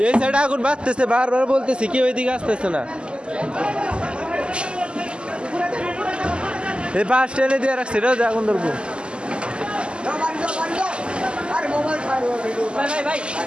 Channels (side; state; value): left; late; 0.051 ms